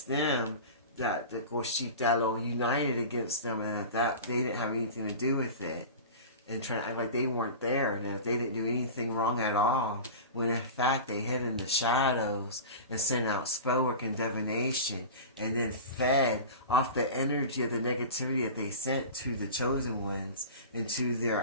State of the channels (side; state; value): both; inverted; correlation -0.32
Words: them, that the Goshitalo united against them, and that they didn't have anything to do with it, and trying to act like they weren't there and that they didn't do anything wrong at all, when in fact they hid in the shadows and sent out spell work and divination, and then fed off the energy of the negativity that they sent to the chosen ones and to